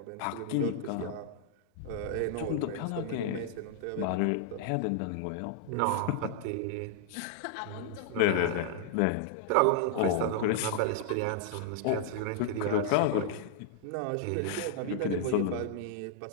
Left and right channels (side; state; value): both; different; correlation -0.01